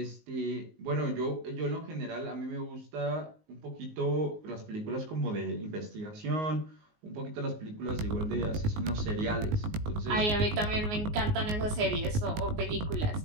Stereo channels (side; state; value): left; late; 19 ms